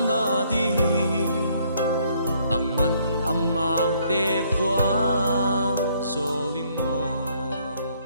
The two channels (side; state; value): both; inverted; correlation -0.67